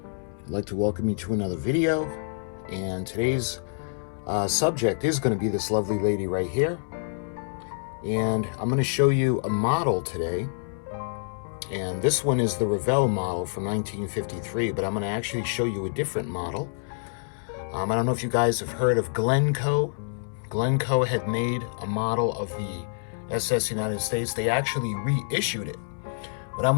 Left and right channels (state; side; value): silent; right; 60 dB below the other